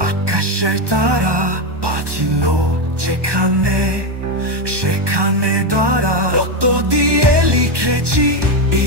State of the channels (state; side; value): late; left; 1.2 ms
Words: আকাশের তারা বাঁচিল যেখানে সেখানে তারা রক্ত দিয়ে লিখেছি